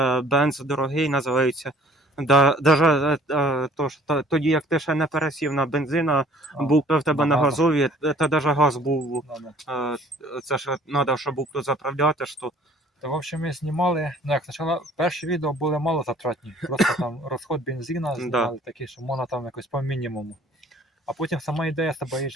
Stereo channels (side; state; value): both; normal; correlation 0.54